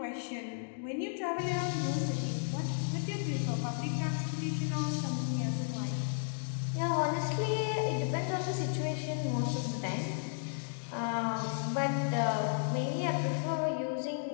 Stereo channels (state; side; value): silent; right; digital silence